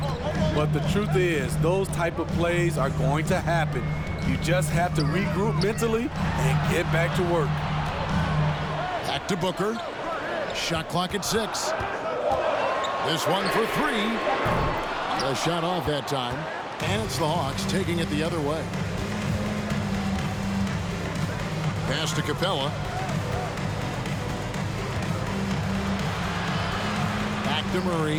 But the truth is, those type of plays are going to happen. You just have to regroup mentally and get back to work. Back to Booker. Shot clock at 6. This one for 3. A shot off that time. And it's the Hawks taking it the other way. Pass to Capella. Back to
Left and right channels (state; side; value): identical; both; correlation 1.00